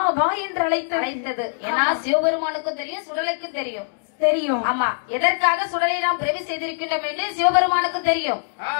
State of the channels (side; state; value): right; silent; digital silence